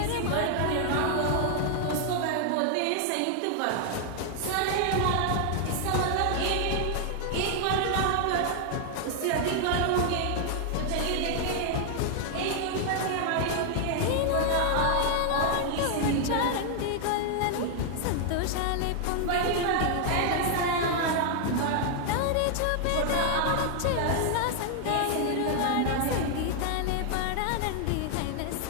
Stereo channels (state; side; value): different; both; correlation 0.00